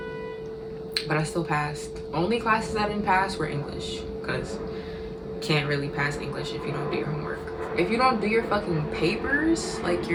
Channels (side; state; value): both; identical; correlation 1.00